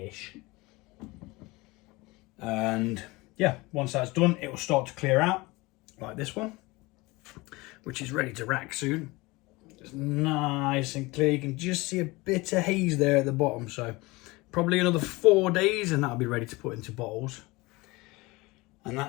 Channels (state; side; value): quieter; right; 22.7 dB